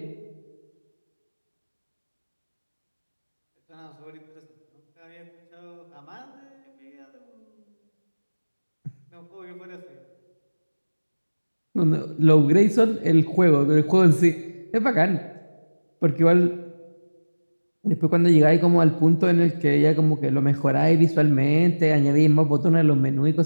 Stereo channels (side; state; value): both; inverted; correlation -1.00